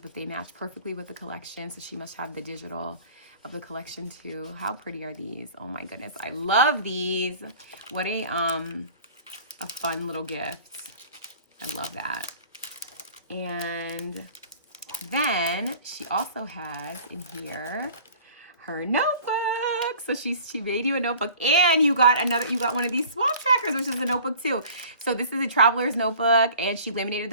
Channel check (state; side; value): inverted; both; correlation -0.46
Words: but they match perfectly with the collection. So she must have the digital of the collection too. How pretty are these? Oh my goodness, I love these. What a fun little gift. I love that. And then she also has in here her notebook. So she made you a notebook, and you got one of these swap trackers, which is a notebook too. So this is a traveler's notebook, and she laminated